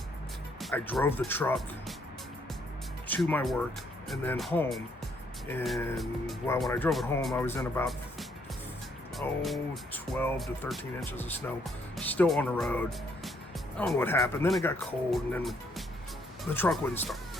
I drove the truck to my work and then home. And well, when I drove it home, I was in about 12 to 13 inches of snow, still on the road. I don't know what happened. Then it got cold, and then the truck wouldn't start.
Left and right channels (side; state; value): both; normal; correlation 0.70